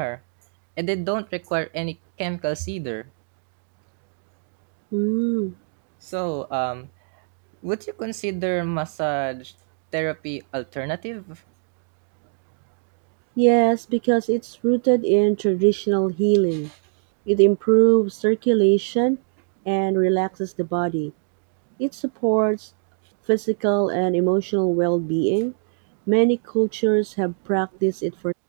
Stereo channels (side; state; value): left; silent; 59 dB below the other